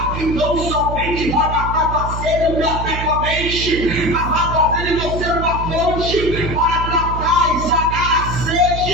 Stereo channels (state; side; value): noise; right; hum, 5 dB below the sound